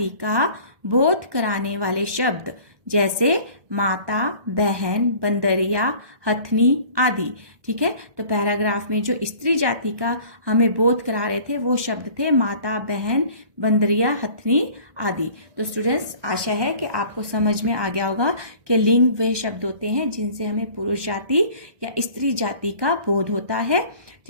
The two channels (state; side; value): late; left; 1.6 ms